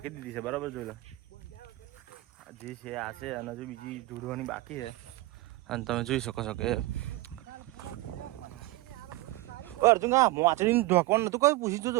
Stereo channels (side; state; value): left; quieter; 19.2 dB